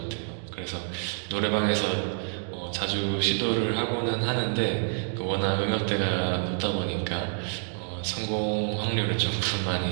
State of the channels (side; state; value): left; silent; digital silence